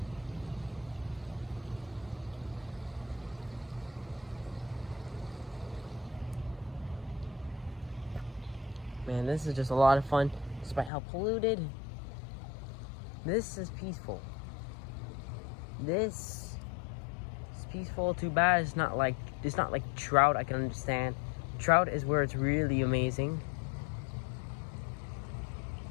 Man, this is just a lot of fun, despite how polluted. This is peaceful. This is peaceful. Too bad it's not like trout. I can understand. Trout is where it's really amazing.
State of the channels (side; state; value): right; drops out; at 10.9 s